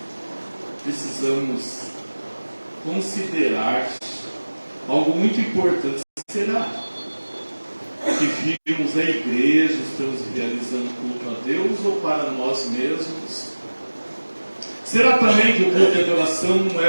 Precisamos considerar algo muito importante. Será que vimos a igreja, estamos realizando culto a Deus ou para nós mesmos? Será também que o culto de adoração não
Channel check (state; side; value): inverted; both; correlation -1.00